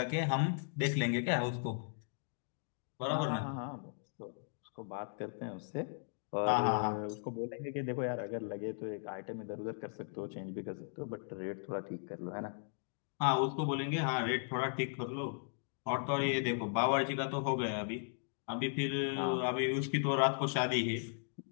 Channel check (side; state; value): right; silent; digital silence